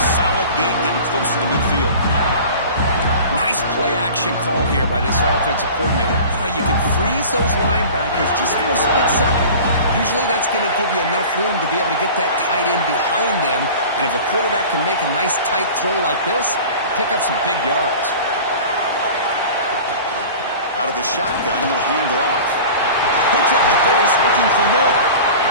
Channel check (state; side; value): inverted; both; correlation -0.39